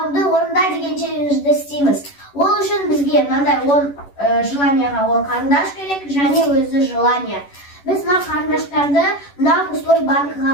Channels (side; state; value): right; late; 11 ms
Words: орында деген челленджді істейміз. Ол үшін бізге мынандай 10 желанияға 10 қарындаш керек, және өзі желания. Біз мына қарындаштарды мына пустой